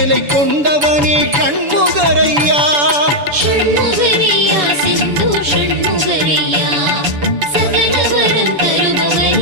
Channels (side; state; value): left; late; 7.0 ms